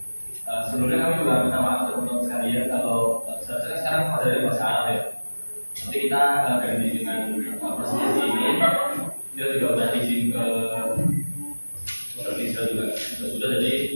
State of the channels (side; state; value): both; inverted; correlation -1.00